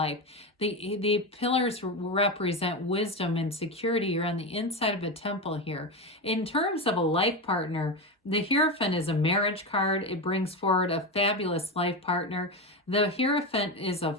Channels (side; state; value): both; normal; correlation 0.17